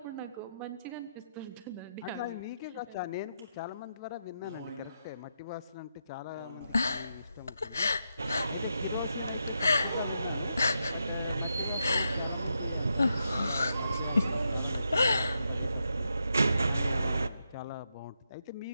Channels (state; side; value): inverted; both; correlation -0.83